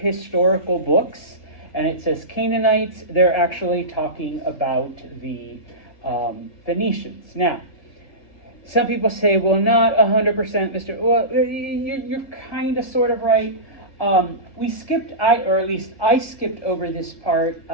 books, and it says Canaanites, they're actually talking about the Phoenicians. Now, some people say, well, not 100%, Mr. Well, you're kind of sort of right. We skipped, or at least I skipped over this part.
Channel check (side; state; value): right; late; 1.5 ms